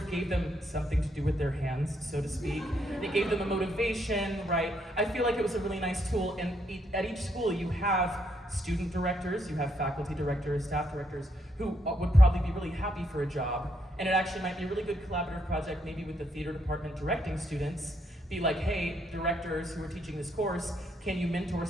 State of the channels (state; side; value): normal; both; correlation 0.75